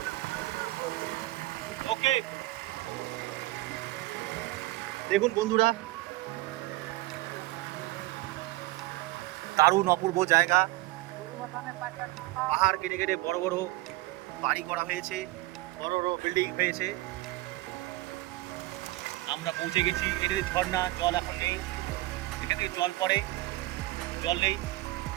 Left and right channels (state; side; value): quieter; left; 19.5 dB